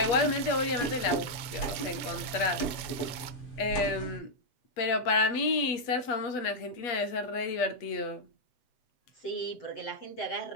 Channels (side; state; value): right; late; 8.4 ms